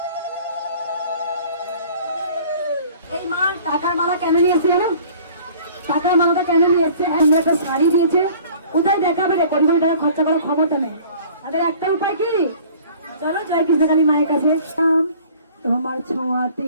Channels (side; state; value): both; inverted; correlation -0.49